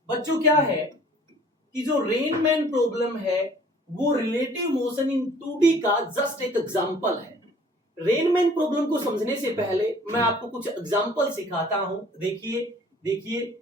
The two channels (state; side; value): normal; both; correlation 0.53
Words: बच्चों क्या है कि जो रेन मैन प्रॉब्लम है वो रिलेटिव मोशन इन 2D का जस्ट एक एग्जांपल है। रेन मैन प्रॉब्लम को समझने से पहले मैं आपको कुछ एग्जांपल सिखाता हूं। देखिए